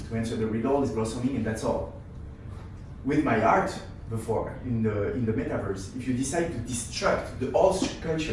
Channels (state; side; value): identical; both; correlation 1.00